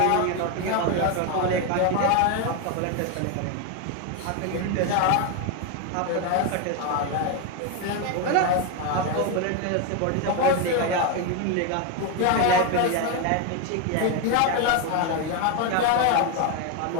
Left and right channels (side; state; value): both; different; correlation 0.02